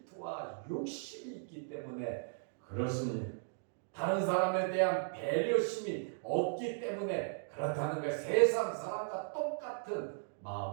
욕심이 있기 때문에 그렇습니다. 다른 사람에 대한 배려심이 없기 때문에 그렇다는 거예요. 세상 사람과 똑같은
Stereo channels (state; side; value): silent; left; digital silence